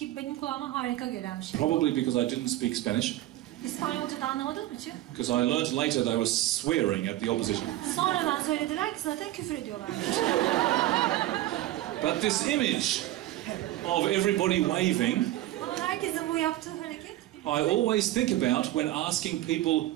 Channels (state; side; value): quieter; left; 15.2 dB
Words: benim kulağıma harika gelen bir şey. Probably because I didn't speak Spanish, İspanyolca da anlamadığım için. because I learnt later they were swearing at the opposition. Sonradan söylediler ki zaten küfür ediyorlar. But this image of everybody waving, Ama herkesin bu yaptığı hareket. I always think about when asking people